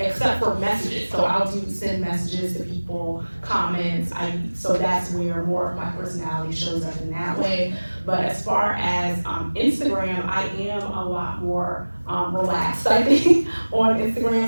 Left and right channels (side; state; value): both; inverted; correlation -1.00